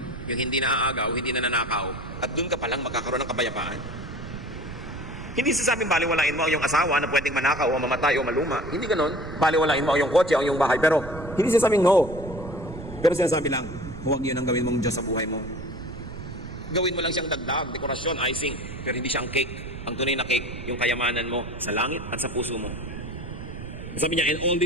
Yung hindi naaagaw, hindi nananakaw. At doon ka palang magkakaroon ng kapayapaan. Hindi sasabing baliwalain mo ang iyong asawa na pwedeng manakaw o mamatay o maluma. Hindi ganon. Baliwalain mo ang iyong kotse o ang iyong bahay. Pero hindi sasabing no. Pero sinasabi lang, huwag yun ang gawin mong Diyos sa buhay mo. Gawin mo lang siyang dagdag, dekorasyon, icing. Pero hindi siyang cake. Ang tunay na cake, yung kayamanan mo sa langit at sa puso mo. Sabi niya, and all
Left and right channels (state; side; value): noise; right; rumble, 11 dB below the sound